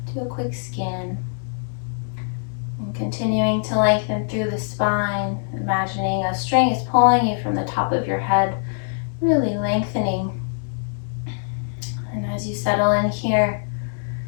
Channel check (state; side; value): silent; right; digital silence